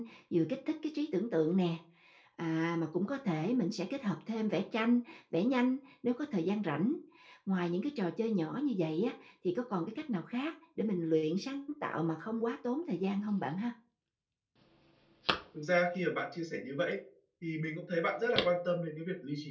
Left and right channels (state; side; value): identical; both; correlation 1.00